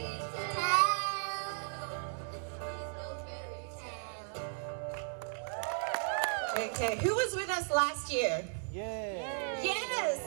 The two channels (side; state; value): left; silent; digital silence